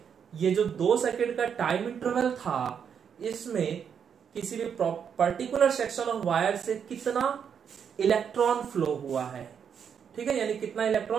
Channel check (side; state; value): left; quieter; 7.5 dB